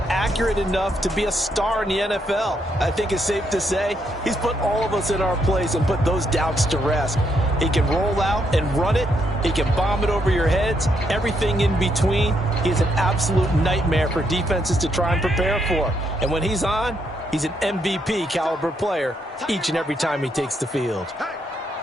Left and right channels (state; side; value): normal; both; correlation 0.76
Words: accurate enough to be a star in the NFL? I think it's safe to say he's put all of us in our place and put those doubts to rest. He can roll out and run it. He can bomb it over your heads. Everything in between. He's an absolute nightmare for defenses to try and prepare for. And when he's on, he's an MVP caliber player each and every time he takes the field.